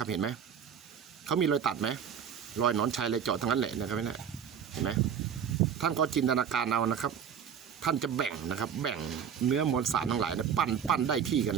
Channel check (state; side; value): quieter; left; 7.9 dB